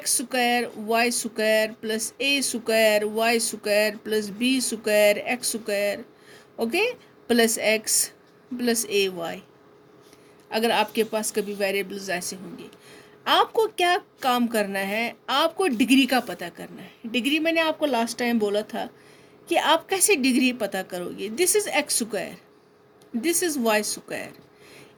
square y square plus a square y square plus b square x square, okay, plus x plus ay, अगर आपके पास कभी variables ऐसे होंगे, आपको क्या काम करना है, आपको डिग्री का पता करना है. डिग्री मैंने आपको लास्ट टाइम बोला था कि आप कैसे डिग्री पता करोगे. This is x square, this is y square.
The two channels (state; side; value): identical; both; correlation 1.00